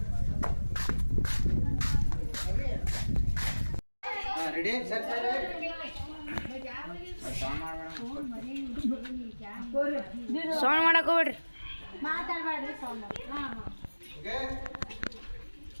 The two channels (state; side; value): inverted; both; correlation -1.00